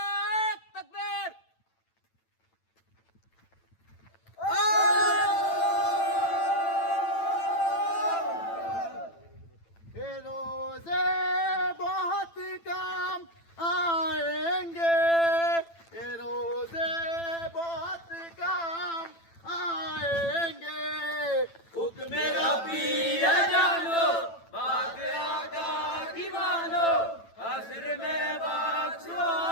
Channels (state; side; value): late; right; 9.0 ms